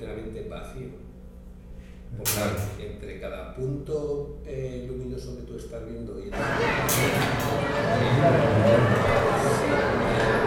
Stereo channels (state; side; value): identical; both; correlation 1.00